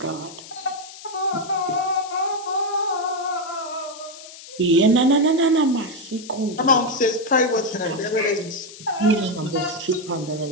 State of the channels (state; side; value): noise; left; hiss, 16 dB below the sound